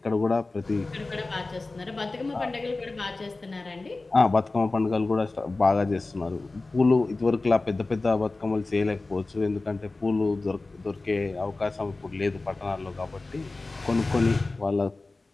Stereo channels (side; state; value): right; quieter; 3.3 dB